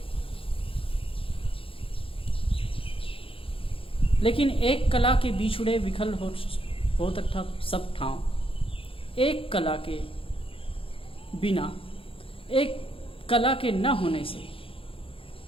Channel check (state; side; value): late; right; 0.26 ms